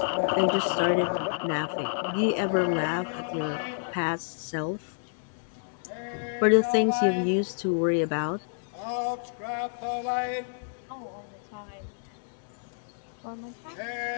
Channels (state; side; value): silent; right; digital silence